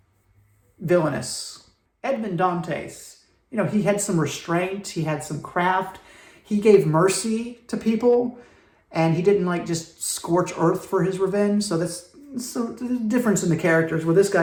villainous. Edmond Dantes. He had some restraint, he had some craft, he gave mercy to people, and he didn't just scorch earth for his revenge. So there's a difference in the characters, where this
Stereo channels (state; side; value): identical; both; correlation 1.00